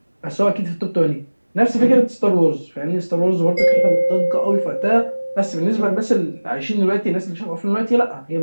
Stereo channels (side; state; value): both; inverted; correlation -1.00